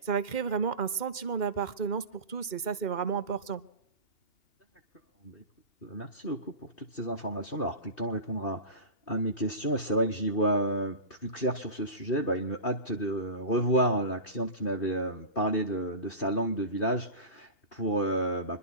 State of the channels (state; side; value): late; right; 2.1 ms